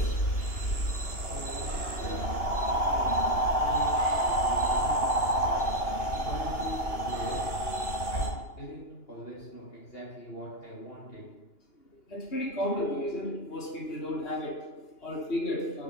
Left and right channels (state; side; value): late; right; 2.9 ms